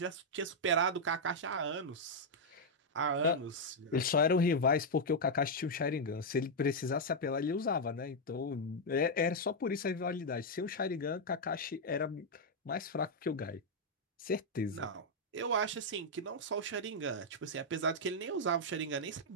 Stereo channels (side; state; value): both; normal; correlation -0.02